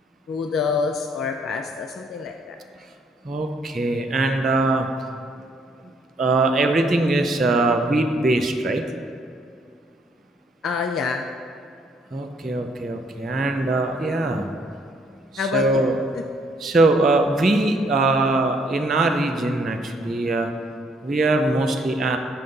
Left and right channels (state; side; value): normal; both; correlation 0.68